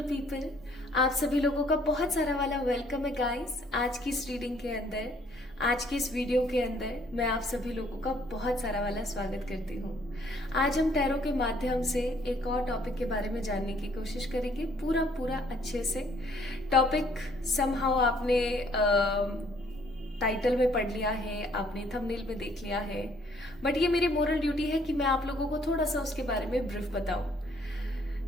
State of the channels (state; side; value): normal; both; correlation 0.63